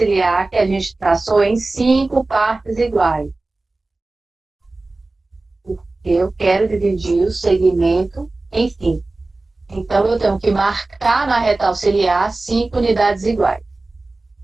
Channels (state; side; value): quieter; left; 3.1 dB